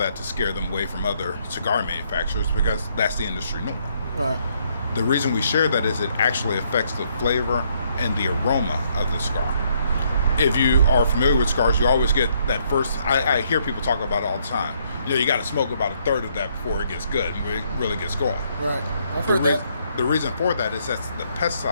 to scare them away from other cigar manufacturers because that's the industry norm. Right. The reason we share that is it actually affects the flavor and the aroma of the cigar. If you are familiar with cigars, you always get that first, I hear people talk about it all the time. You got to smoke about a third of that before it gets good and it really gets going. Right. I've heard that. The reason for that is that's the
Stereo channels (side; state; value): both; inverted; correlation -0.71